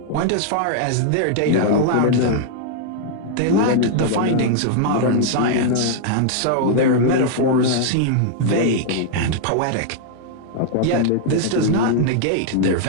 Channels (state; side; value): different; both; correlation -0.01